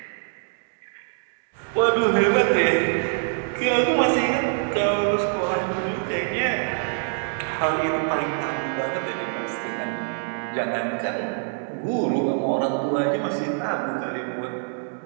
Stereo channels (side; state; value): left; silent; 62 dB below the other